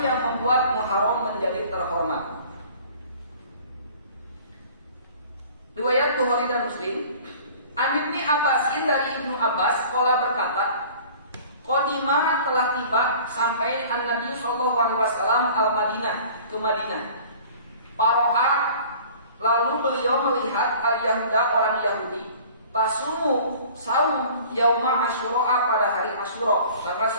yang membuat Muharram menjadi terhormat. Riwayat Bukhari dan Muslim, An Ibnu Abbasin, dari Ibnu Abbas, qala berkata, qadima telah tiba sampai An-Nabi sallallahu alaihi wasallam al-Madinah, ke Madinah. Paro'a, lalu beliau melihat al-Yahuda, orang Yahudi, tasumu saum yauma Asyura, pada hari Asyura tanggal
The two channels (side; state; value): both; inverted; correlation -0.47